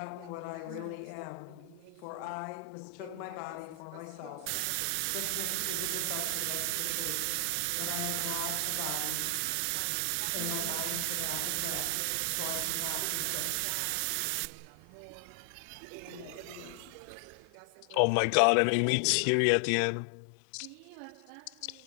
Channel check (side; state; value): both; different; correlation 0.00